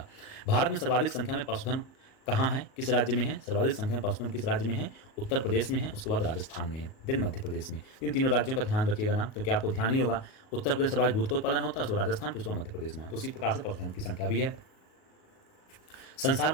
भारत में सर्वाधिक संख्या में पशुधन कहाँ है, किस राज्य में है? सर्वाधिक संख्या में पशुधन किस राज्य में है? उत्तर प्रदेश में है, उसके बाद राजस्थान में है, देन मध्य प्रदेश में। इन तीनों राज्यों का ध्यान रखिएगा नाम, क्योंकि आपको ध्यान ही होगा उत्तर प्रदेश सर्वाधिक दूध का उत्पादन होता है, उसको राजस्थान, फिर उसको मध्य प्रदेश में। तो उसी प्रकार से पशुधन की संख्या भी है। संसार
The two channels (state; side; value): late; right; 38 ms